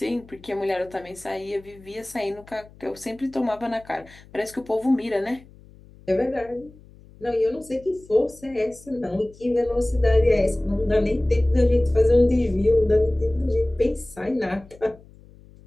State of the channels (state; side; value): noise; left; hum, 23 dB below the sound